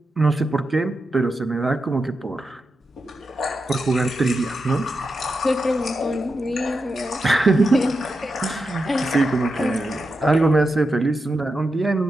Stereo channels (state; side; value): normal; both; correlation 0.88